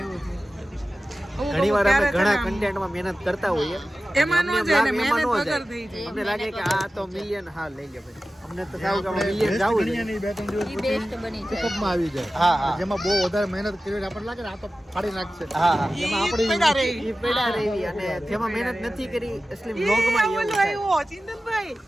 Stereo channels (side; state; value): both; normal; correlation 0.95